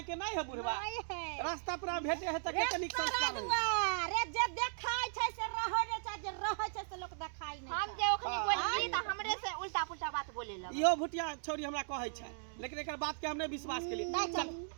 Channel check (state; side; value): silent; left; digital silence